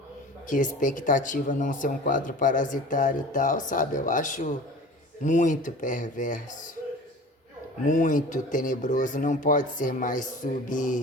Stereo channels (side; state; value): both; normal; correlation 0.40